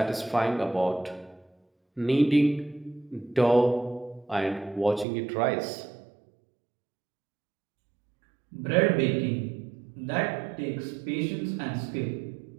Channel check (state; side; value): drops out; left; at 5.1 s